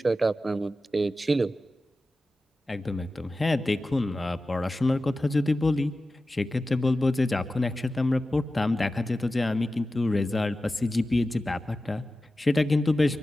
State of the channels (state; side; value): normal; both; correlation 0.94